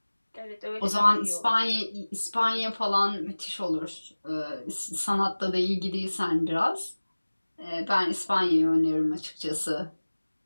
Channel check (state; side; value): inverted; both; correlation -1.00